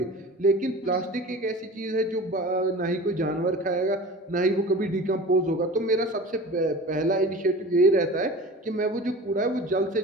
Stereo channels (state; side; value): normal; both; correlation 0.37